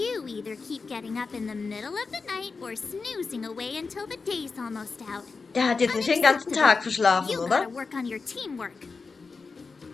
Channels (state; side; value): quieter; right; 4.5 dB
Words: either keep getting up in the middle of the night or snoozing away until the day's almost out. Der hat jetzt nicht den ganzen Tag verschlafen, You oder? gotta work on your teamwork.